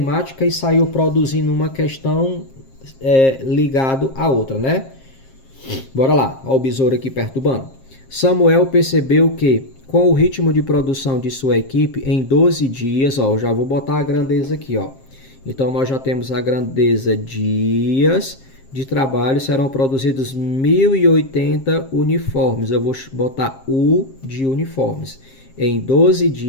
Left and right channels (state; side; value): late; right; 7.5 ms